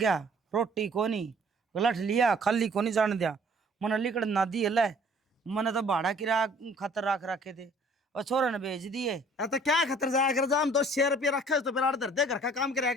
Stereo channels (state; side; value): normal; both; correlation 0.55